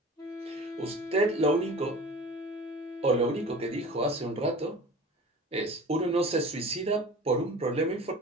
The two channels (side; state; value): both; normal; correlation 0.39